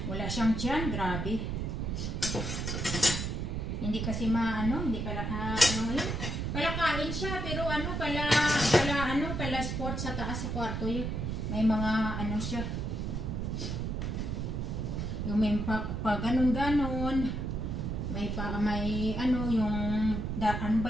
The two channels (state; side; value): noise; right; rumble, 2 dB below the sound